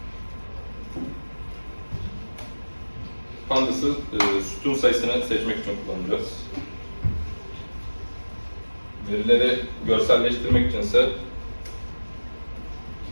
Pandas'ı sütun sayısını seçmek için kullanacağız. Verileri görselleştirmek içinse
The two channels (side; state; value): both; inverted; correlation -1.00